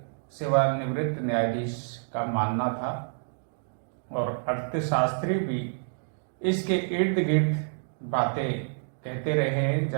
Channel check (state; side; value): silent; left; digital silence